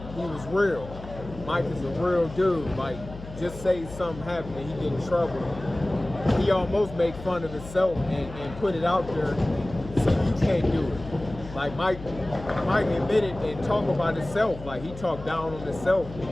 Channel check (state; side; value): noise; left; hum, 13 dB below the sound